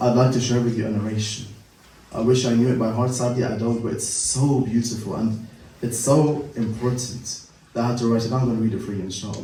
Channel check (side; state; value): both; identical; correlation 1.00